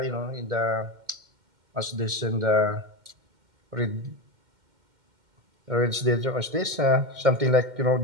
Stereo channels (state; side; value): late; left; 2.1 ms